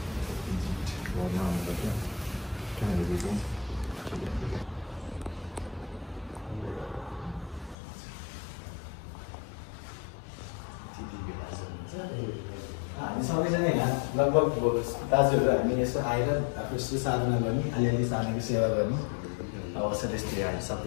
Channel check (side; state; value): right; drops out; at 7.8 s